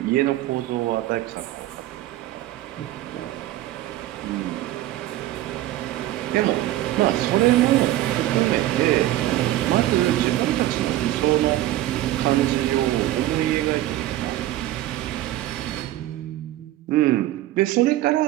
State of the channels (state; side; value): quieter; left; 14.8 dB